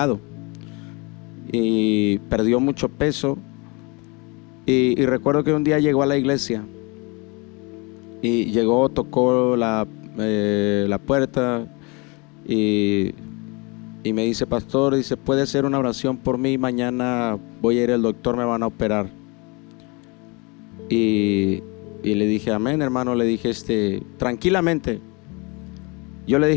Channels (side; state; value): right; quieter; 29.0 dB